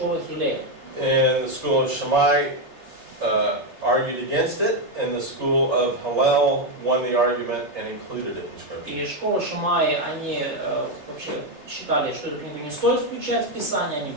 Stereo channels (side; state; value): left; late; 3.3 ms